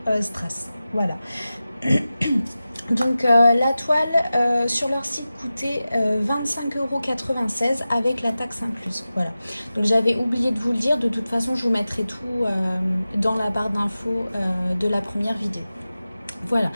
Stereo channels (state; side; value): inverted; both; correlation -0.95